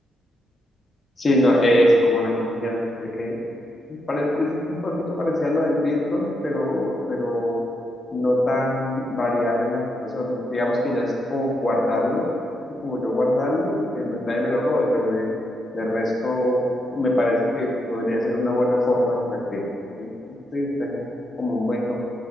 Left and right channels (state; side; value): normal; both; correlation 0.81